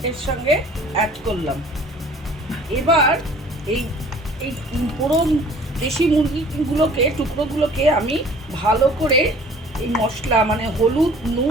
এর সঙ্গে অ্যাড করলাম। এবার এই এই পুরো দেশি মুরগিগুলোকে টুকরোগুলোকে আমি ভালো করে এই মশলা মানে হলুদ,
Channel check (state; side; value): normal; both; correlation 0.50